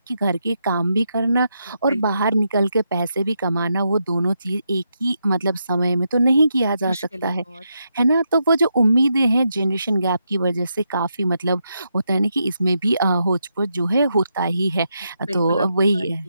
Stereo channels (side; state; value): both; inverted; correlation -0.82